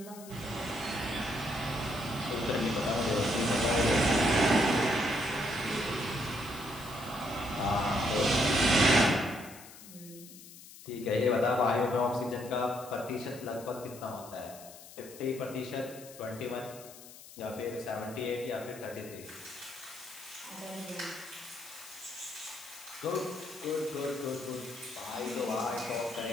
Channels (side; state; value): left; noise; hiss, 17 dB below the sound